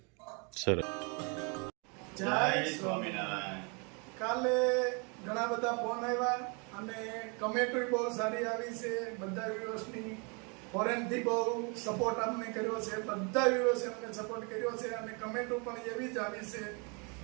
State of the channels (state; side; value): quieter; left; 33.3 dB